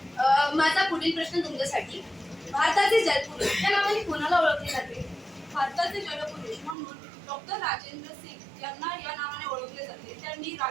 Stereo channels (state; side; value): drops out; left; at 6.8 s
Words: माझा पुढील प्रश्न तुमच्यासाठी, भारताचे जलपुरुष या नावाने कोणाला ओळखले जाते? भारताचे जलपुरुष म्हणून डॉक्टर राजेंद्र सिंग यांना या नावाने ओळखले जाते. त्यांनी